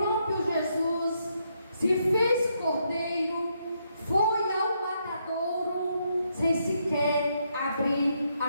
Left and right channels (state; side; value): inverted; both; correlation -0.77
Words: Jesus, se fez cordeiro, foi ao matadouro sem sequer abrir